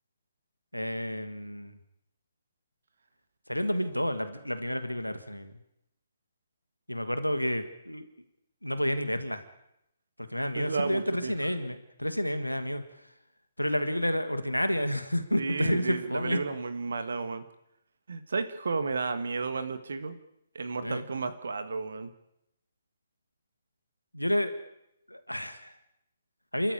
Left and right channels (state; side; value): inverted; both; correlation -0.94